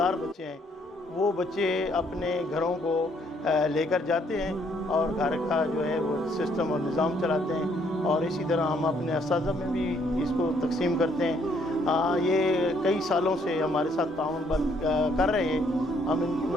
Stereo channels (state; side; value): normal; both; correlation 0.68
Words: बच्चे हैं, वो बच्चे अपने घरों को लेकर जाते हैं और घर का जो है वो सिस्टम और निज़ाम चलाते हैं। और इसी तरह हम अपने असातिज़ा में भी इसको तकसीम करते हैं। ये कई सालों से हमारे साथ ताउन कर रहे हैं, हम इनकी